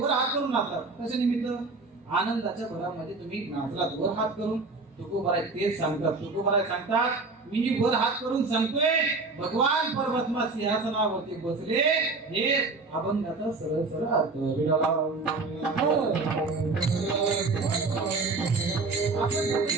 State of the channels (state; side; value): quieter; left; 3.8 dB